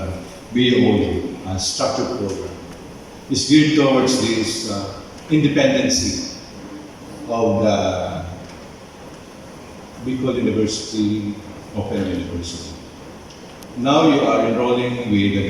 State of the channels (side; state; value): both; identical; correlation 1.00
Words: BU structured program is geared towards this independency of the Bicol University, Open University. Now you are enrolling with the